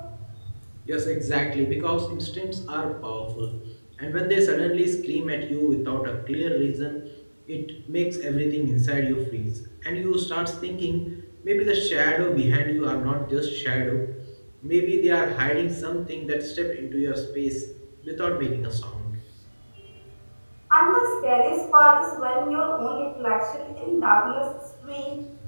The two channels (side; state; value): both; inverted; correlation -1.00